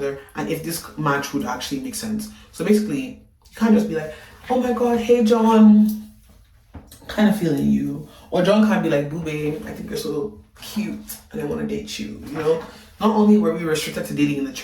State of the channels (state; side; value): identical; both; correlation 1.00